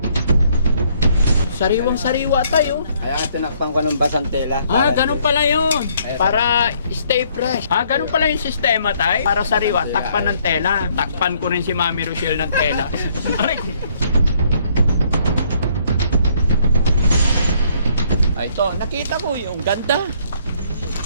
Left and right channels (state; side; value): inverted; both; correlation -0.66